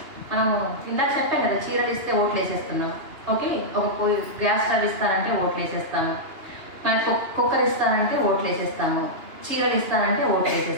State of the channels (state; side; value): late; left; 2.9 ms